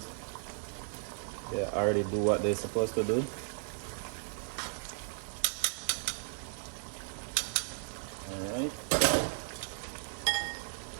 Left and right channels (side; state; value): left; silent; 54 dB below the other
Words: to. They already do what they're supposed to do. Alright.